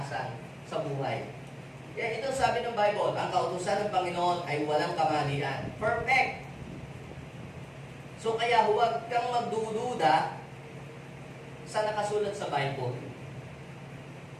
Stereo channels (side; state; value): both; identical; correlation 1.00